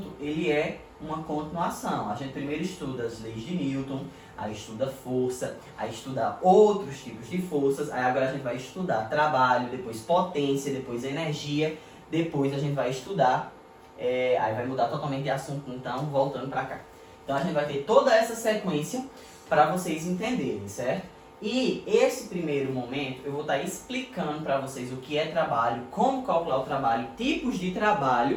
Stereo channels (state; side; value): identical; both; correlation 1.00